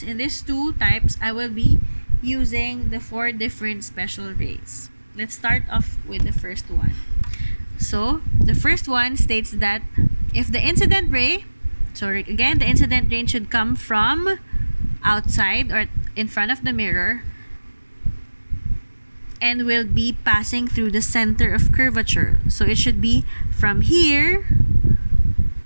in these two types, I will be using the 4 different special rays. Let's start off with the first one. So, the first one states that if the incident ray, the incident ray should come from outside or in front of the mirror and will be passing through the center of curvature. So, it should be from here,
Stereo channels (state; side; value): inverted; both; correlation -1.00